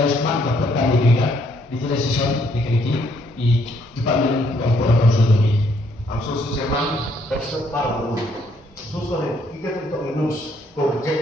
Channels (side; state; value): both; normal; correlation 0.69